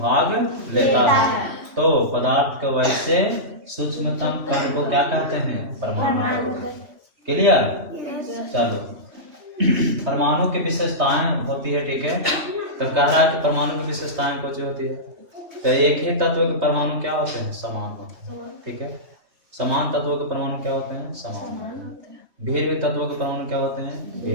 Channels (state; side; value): late; left; 3.2 ms